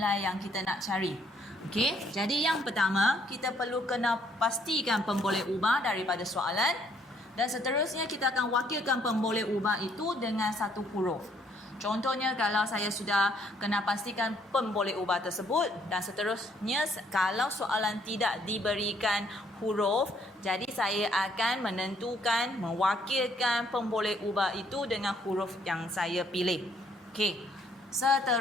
yang kita nak cari. Okey, jadi yang pertama, kita perlu kena pastikan pemboleh ubah daripada soalan. Dan seterusnya kita akan wakilkan pemboleh ubah itu dengan satu huruf. Contohnya kalau saya sudah kena pastikan pemboleh ubah tersebut dan seterusnya kalau soalan tidak diberikan huruf, jadi saya akan menentukan mewakilkan pemboleh ubah itu dengan huruf yang saya pilih. Okey.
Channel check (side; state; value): both; normal; correlation 0.67